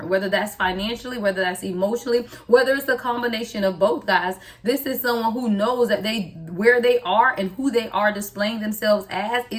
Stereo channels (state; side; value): identical; both; correlation 1.00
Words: whether that's financially, whether that's emotionally, whether it's a combination of both, guys. This is someone who knows that where they are and who they are displaying themselves as